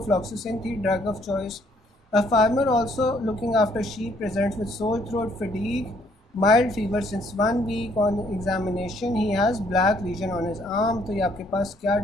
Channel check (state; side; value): normal; both; correlation 0.66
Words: थी drug of choice. A farmer also looking after sheep presents with sore throat, fatigue, mild fever since 1 week, on examination he has black lesion on his arm. तो ये आपके पास क्या